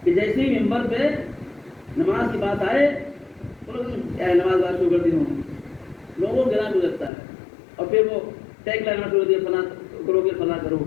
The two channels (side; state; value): right; drops out; at 7.1 s